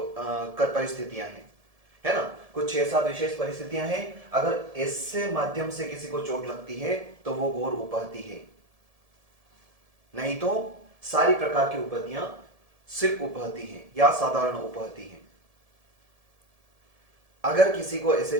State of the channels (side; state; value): left; late; 1.7 ms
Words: हैं, है ना। कुछ 6-7 विशेष परिस्थितियां हैं। अगर इससे माध्यम से किसी को चोट लगती है तो वो गौर उपहति है, नहीं तो सारी प्रकार की उपहतियां सिर्फ उपहति हैं या साधारण उपहति हैं। अगर किसी को